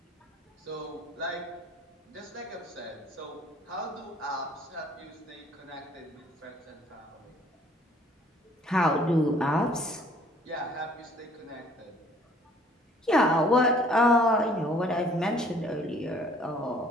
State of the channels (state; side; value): normal; both; correlation 0.57